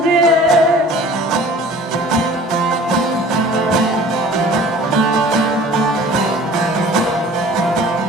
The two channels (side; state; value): both; normal; correlation 0.47